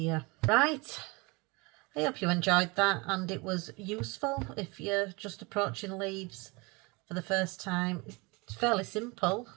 Right, I hope you enjoyed that and it was useful if you're just approaching leaves for the first time. It's fairly simple,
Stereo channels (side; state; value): left; quieter; 26.8 dB